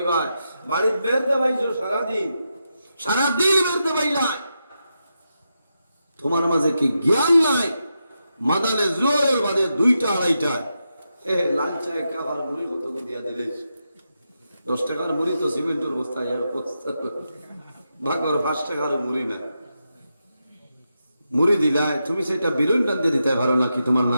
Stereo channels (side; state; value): both; inverted; correlation -0.86